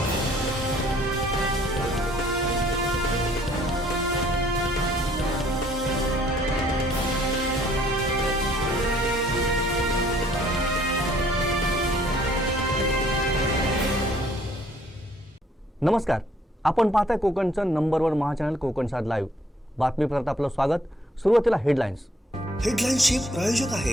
नमस्कार, आपण पाहताय कोकणचं नंबर 1 महाचॅनल कोकण सात लाईव्ह। बातमीपत्रात आपलं स्वागत। सुरुवातीला हेडलाईन्स। हेडलाईन्सचे प्रायोजक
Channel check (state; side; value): normal; both; correlation 0.62